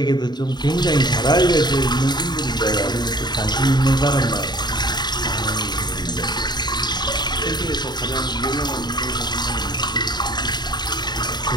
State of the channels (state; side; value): late; right; 0.21 ms